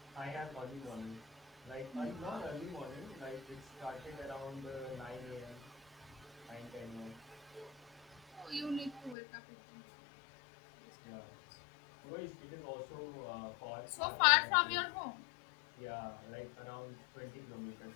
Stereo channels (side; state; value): right; drops out; at 9.2 s